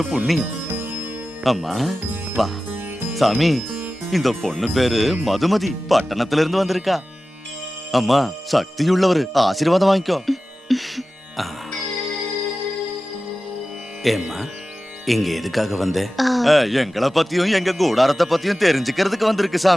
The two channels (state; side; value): normal; both; correlation 0.95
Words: புண்ணியம். அம்மா வா. சாமி, இந்த பொண்ணு பேரு மதுமதி, பட்டணத்துல இருந்து வந்திருக்கா. அம்மா, சக்தியுள்ளவர், ஆசீர்வாதம் வாங்கிக்கோ. ஆ. ஏம்மா இங்க எதுக்காக வந்த? எங்களை பத்தியும் எங்க கூடாரத்தை பத்தியும் தெரிஞ்சுக்கிறதுக்கு வந்திருக்கு